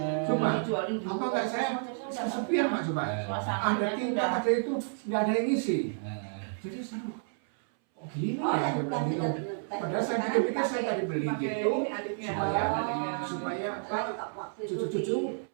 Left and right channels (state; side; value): silent; left; 57 dB below the other